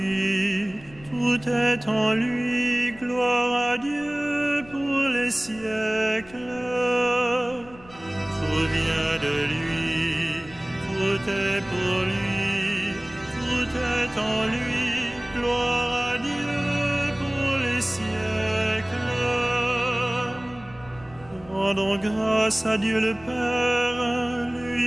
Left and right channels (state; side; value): noise; left; rumble, 22 dB below the sound